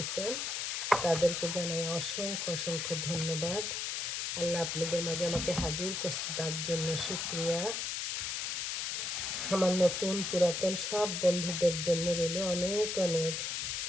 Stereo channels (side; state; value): left; noise; hiss, 2 dB below the sound